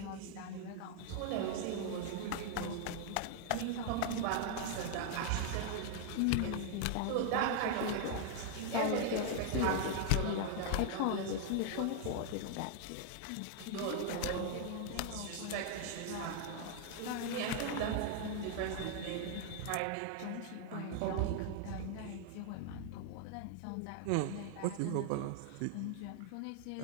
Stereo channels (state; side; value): different; both; correlation 0.00